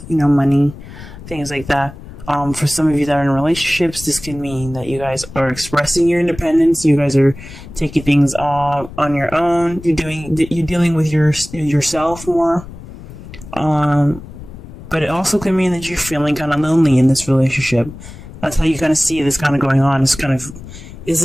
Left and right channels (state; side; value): noise; left; rumble, 15 dB below the sound